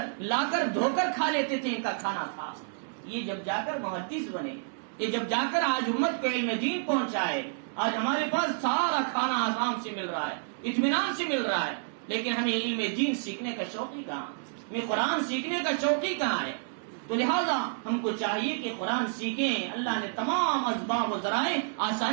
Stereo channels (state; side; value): silent; left; digital silence